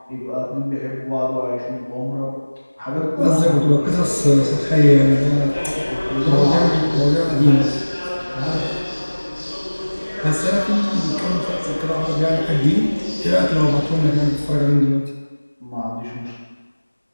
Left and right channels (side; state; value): both; inverted; correlation -1.00